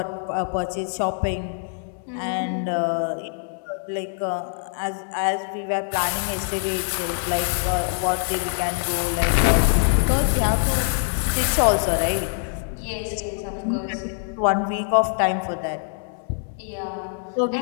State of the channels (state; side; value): silent; right; 63 dB below the other